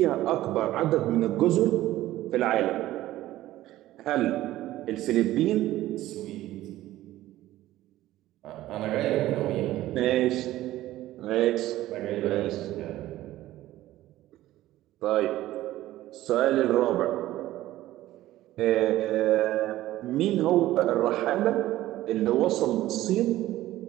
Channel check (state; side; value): quieter; left; 15.2 dB